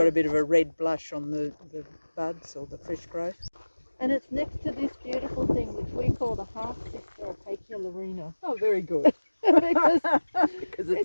a bit of a red blush on the buds or the fresh growth. And it's next to this beautiful thing which we call the half-sister of Acacia larina. Oh, very good. Because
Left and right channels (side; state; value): both; inverted; correlation -1.00